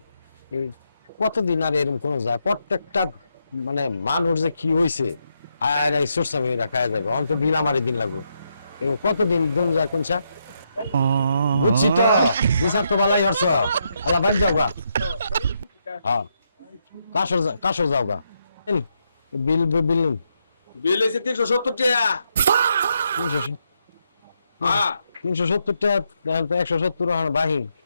কতদিন আর এরকম কোন যায়? প্রত্যেকটা মানে মানুষ যে কি হয়েছে আর এই সোরসামি রাখায় যাবে, অন্ত বিল আমারই দিন লাগবে। কতদিন দিন যায় কোনটা বুঝছি তো, বিচার তো বালাই হরছ। আলা বাড়ি যাও গা। হ্যাঁ, কাশর যাও গা। বিল বিল বিল হয়েছে 370 টাকা। 370 টাকা, 170 বাহি।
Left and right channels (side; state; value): both; inverted; correlation -0.80